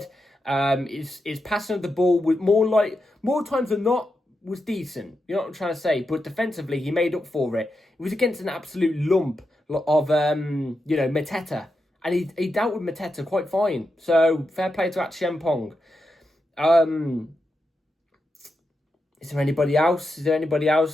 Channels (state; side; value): normal; both; correlation 0.87